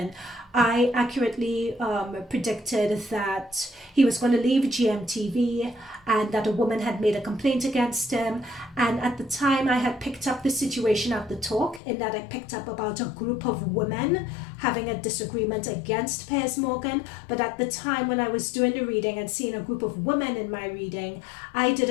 I accurately predicted that he was going to leave GMTV and that a woman had made a complaint against him. And at the time I had picked up the situation at the talk, in that I picked up about a group of women having a disagreement against Piers Morgan. But at the time when I was doing the reading and seeing a group of women in my reading, I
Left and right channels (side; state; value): right; drops out; at 11.8 s